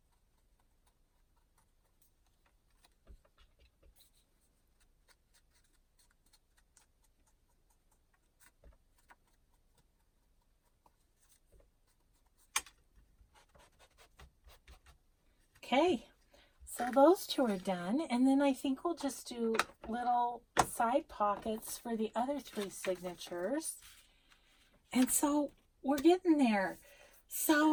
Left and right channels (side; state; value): both; identical; correlation 1.00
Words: Okay, so those two are done, and then I think we'll just do little side pockets for the other 3 signatures. And so we're getting there.